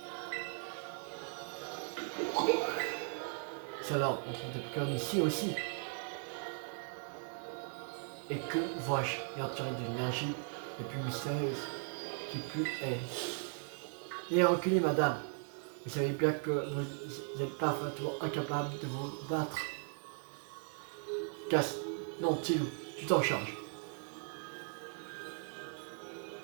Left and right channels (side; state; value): left; silent; 52 dB below the other